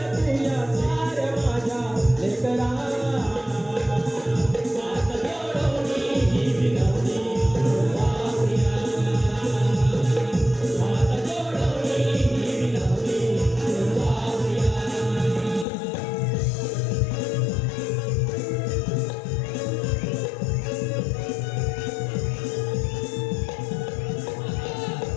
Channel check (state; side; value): drops out; right; at 15.7 s